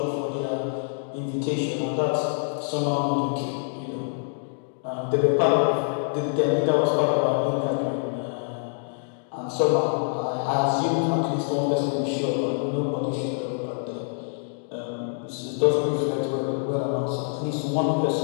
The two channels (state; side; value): silent; right; digital silence